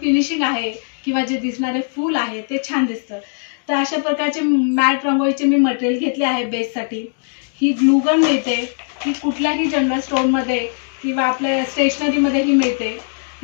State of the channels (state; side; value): silent; right; 62 dB below the other